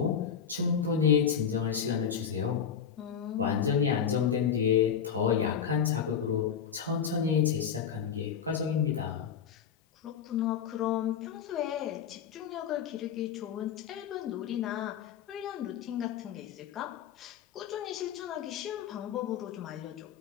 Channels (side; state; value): right; quieter; 7.8 dB